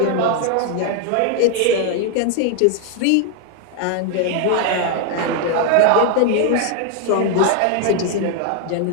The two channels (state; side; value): different; both; correlation 0.01